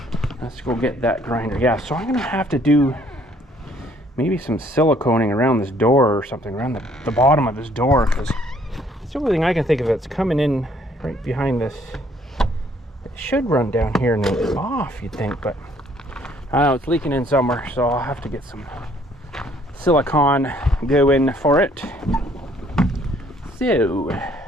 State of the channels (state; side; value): normal; both; correlation 0.63